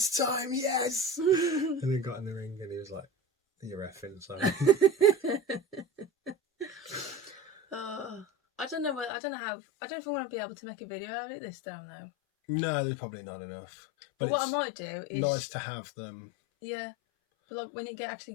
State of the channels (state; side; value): drops out; right; at 9.1 s